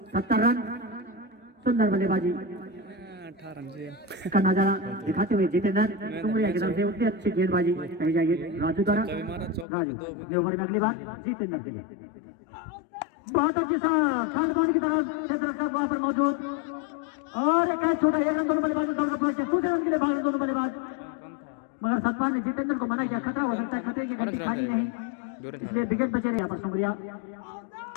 70 रन। सुंदर बल्लेबाजी 18 रन से का नजारा दिखाते हुए जितेंद्र सुमरिया की तरफ से उतनी अच्छी गेंदबाजी कही जाएगी राजू द्वारा। राजू ओवर में अगली बार जितेंद्र के लिए बहुत अच्छी खालबान की तरफ क्षेत्र रक्षक वहां पर मौजूद और एक छोटा 1 रन दोनों बल्लेबाज दूसरे रन के लिए भाग दोनों बल्लेबाज, मगर सतपाल ने जितेंद्र को मना किया। खतरा हो सकता है, खतरे की घंटी खाली नहीं, इसलिए विकेट बचे रहे यहाँ पर सुमरिया।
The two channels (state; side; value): drops out; right; at 9.7 s